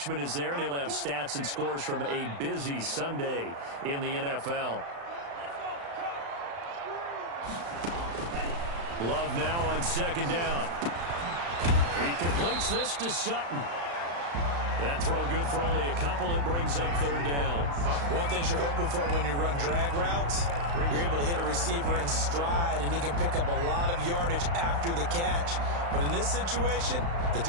is there, and he'll have stats and scores from a busy Sunday in the NFL. Love now on 2nd down. He completes this to Sutton. That throw good for only a couple. It brings up 3rd down. One thing you're hoping for when you run drag routes, you're able to hit a receiver in stride, and he can pick up a lot of yardage after the catch. But in this situation, the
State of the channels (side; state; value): left; late; 35 ms